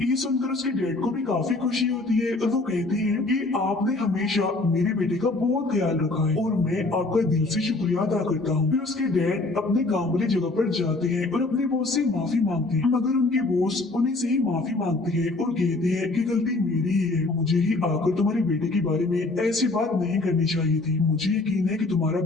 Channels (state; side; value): quieter; right; 3.1 dB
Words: ये सुनकर उसके डैड को भी काफी खुशी होती है और वो कहते हैं कि आपने हमेशा मेरे बेटे का बहुत ख्याल रखा है और मैं आपका दिल से शुक्रिया अदा करता हूँ। फिर उसके डैड अपने काम वाली जगह पर जाते हैं और अपने बॉस से माफी मांगते हैं, मगर उनके बॉस उन्हीं से ही माफी मांगते हैं और कहते हैं कि गलती मेरी ही है, मुझे ही आकर तुम्हारे बेटे के बारे में ऐसी बात नहीं करनी चाहिए थी। मुझे यकीन है कि तुम्हारा